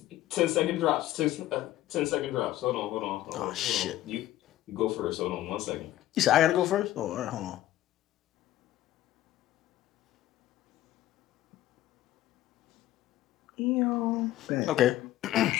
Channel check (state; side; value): quieter; right; 14.3 dB